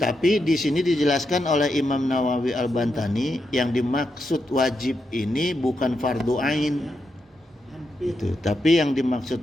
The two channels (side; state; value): both; normal; correlation 0.84